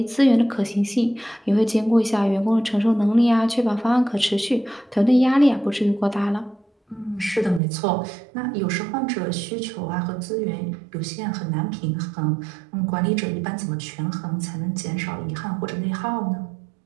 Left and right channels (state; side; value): drops out; left; at 7.6 s